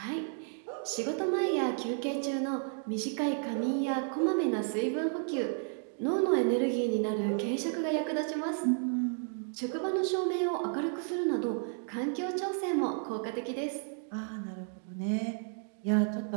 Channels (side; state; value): left; silent; 56 dB below the other